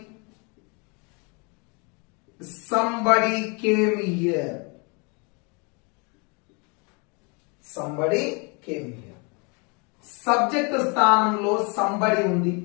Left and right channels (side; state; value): right; quieter; 32.1 dB